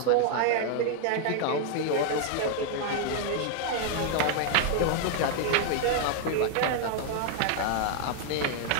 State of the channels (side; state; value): both; different; correlation 0.00